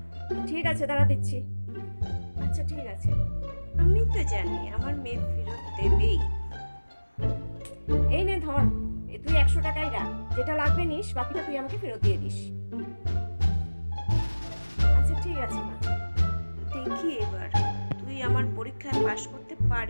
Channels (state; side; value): inverted; both; correlation -1.00